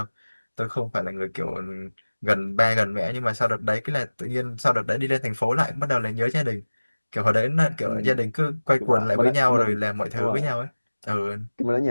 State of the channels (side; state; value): both; inverted; correlation -1.00